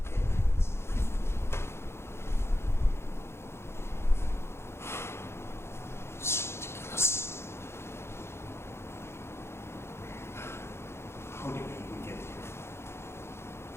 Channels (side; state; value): right; late; 0.12 ms